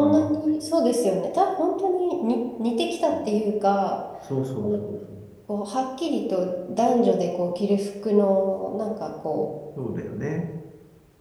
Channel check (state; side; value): identical; both; correlation 1.00